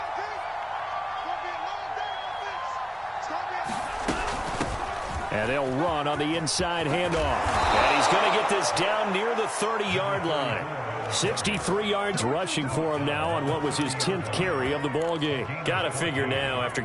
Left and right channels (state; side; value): identical; both; correlation 1.00